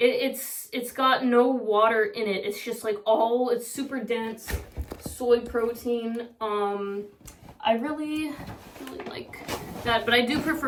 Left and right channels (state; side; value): identical; both; correlation 1.00